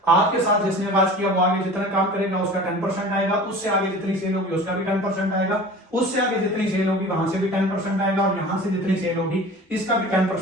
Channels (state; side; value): normal; both; correlation 0.40